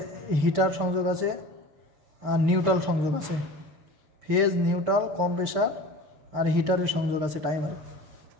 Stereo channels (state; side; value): late; left; 6.7 ms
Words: হিটার সংযোগ আছে, আর নিউট্রাল সংযোগ আছে। ফেজ, নিউট্রাল, কম্প্রেসার আর হিটারের সংযোগ আছে টাইমারে।